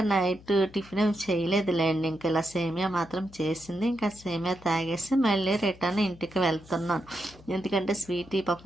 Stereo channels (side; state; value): left; noise; hum, 22 dB below the sound